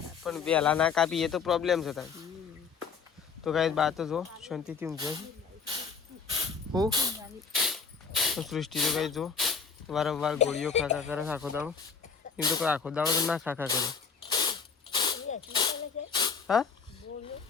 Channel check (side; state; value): right; quieter; 5.8 dB